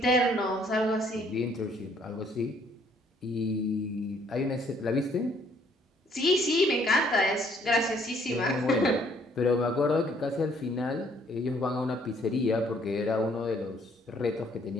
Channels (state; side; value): normal; both; correlation 0.64